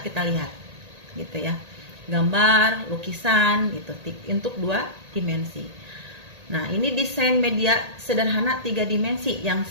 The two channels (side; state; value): left; late; 1.8 ms